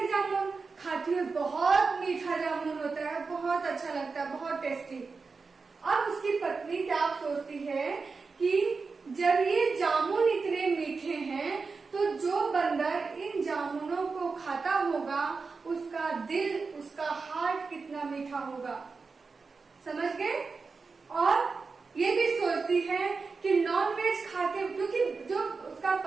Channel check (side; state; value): left; quieter; 4.5 dB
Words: जामुन, खाती है, बहुत मीठा जामुन होता है, बहुत अच्छा लगता है, बहुत टेस्टी। अब उसकी पत्नी क्या सोचती है कि जब ये जामुन इतने मीठे हैं तो जो बंदर इन जामुनों को खाता होगा उसका दिल, उसका हार्ट कितना मीठा होगा, समझ गए। और ये भी सोचती है कि नॉन वेज खाते, क्योंकि जो उसका